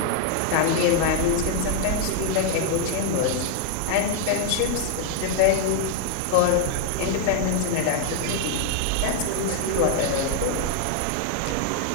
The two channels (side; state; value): both; different; correlation 0.00